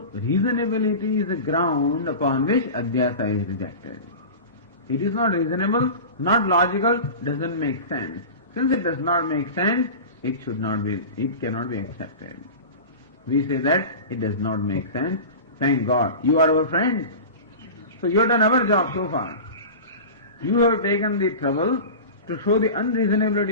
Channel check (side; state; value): both; inverted; correlation -0.32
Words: reasonability is a ground upon which Adhyasa is rejected. It is not reasonable, not logical, doesn't make sense. Since it does not make sense, it cannot be accepted. We say that it does not make sense. Thank God, you are our friends. So you have done our job so far. You have taken the trouble to show the